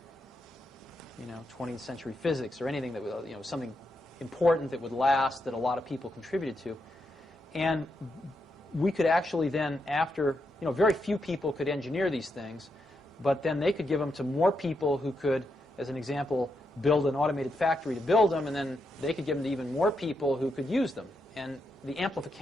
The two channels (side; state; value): both; normal; correlation 0.83